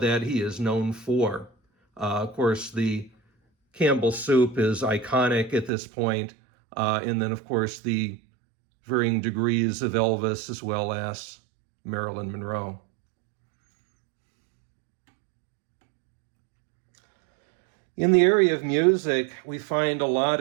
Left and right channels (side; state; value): left; drops out; at 5.7 s